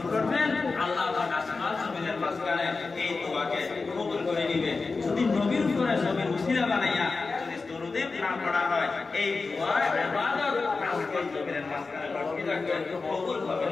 পড়বেন, আল্লাহ পাক আসমান জমিনের মাঝখানে এই দোয়াকে কবুল করে নেবে। যদি নবীর উপরে নবীর উসিলা বানাইয়া যদি দরুদে না পড়া হয়, এই দোয়া ইবাদত আসমান জমিনের মাঝখানে লটকে থাকবে, কবুল হবে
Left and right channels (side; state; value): right; quieter; 4.1 dB